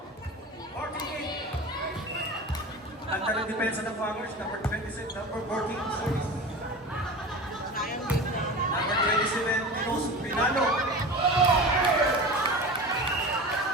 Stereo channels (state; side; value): normal; both; correlation 0.32